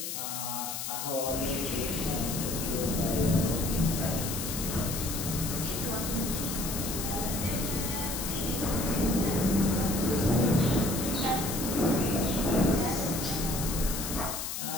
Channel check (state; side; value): noise; left; hiss, 4 dB below the sound